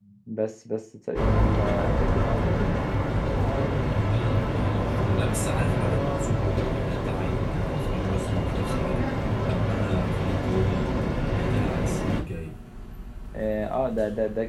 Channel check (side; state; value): both; identical; correlation 1.00